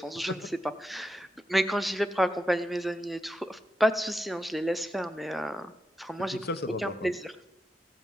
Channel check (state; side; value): normal; both; correlation 0.86